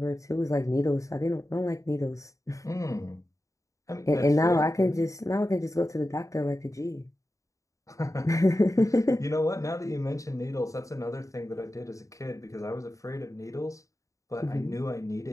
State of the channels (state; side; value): late; right; 0.16 ms